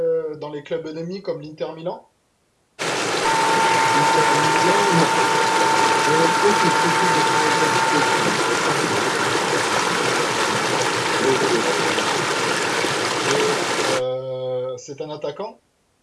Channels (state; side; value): identical; both; correlation 1.00